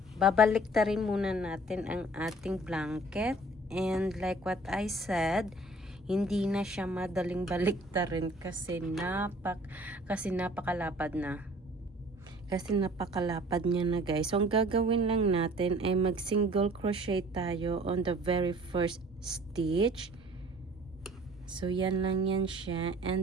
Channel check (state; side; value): normal; both; correlation 0.52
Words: babaliktarin muna natin ang ating blanket. And like what I said, hindi na siya madaling baliktarin kasi napakalapad na. Kasi napakalapad niya na, guys. So, ang gagawin lang natin ay mag single crochet tayo on the very first stitch. So, yan lang yan siya.